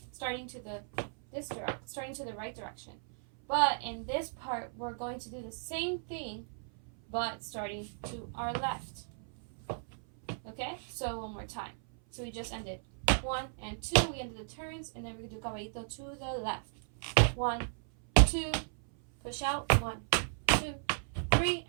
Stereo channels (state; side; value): silent; left; 54 dB below the other